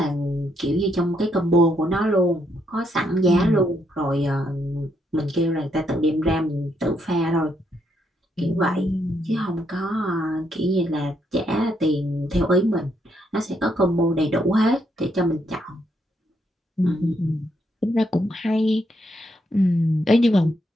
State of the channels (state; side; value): normal; both; correlation 0.76